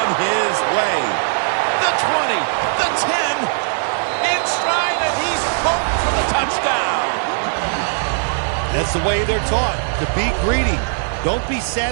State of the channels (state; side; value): silent; left; 67 dB below the other